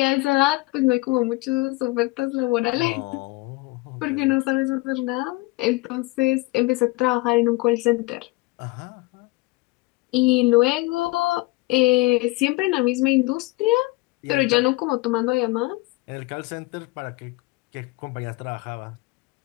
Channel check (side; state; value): right; quieter; 22.0 dB